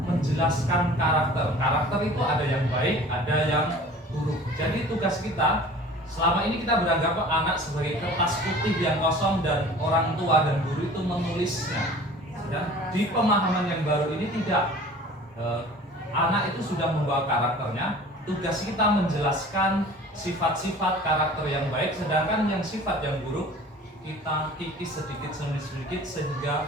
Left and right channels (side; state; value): both; normal; correlation 0.45